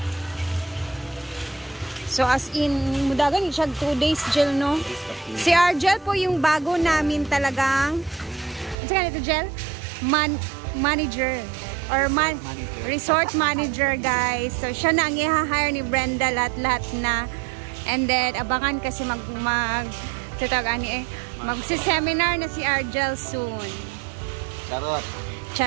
So, as in, mudagan siya 2 days, Jel, no? Si Argel po yung bago namin talagang, ano sa ganito, Jel? Manager. Or resort manager, guys. So, siya na ang i-hire ni Brenda lahat-lahat na. And then, abangan kasi magsi-seminar na si Argel soon. Charot.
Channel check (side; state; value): left; drops out; at 8.8 s